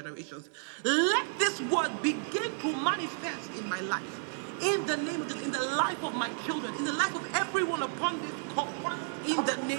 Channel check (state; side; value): silent; left; 55 dB below the other